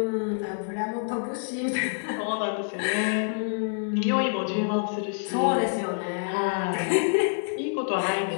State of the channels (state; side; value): silent; right; 57 dB below the other